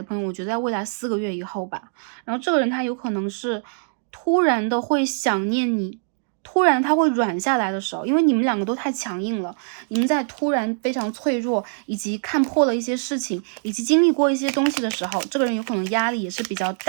朋友，我觉得在未来4个月以后吧，然后这个人他有可能是突然的会想念你，突然他会软下来的时候，因为你们两个都太强硬了，你们在突然非常脆弱，以及看破了一些事情，以及经历过一些东西的时候，这个人有可能压力也是比较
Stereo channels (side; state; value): left; silent; digital silence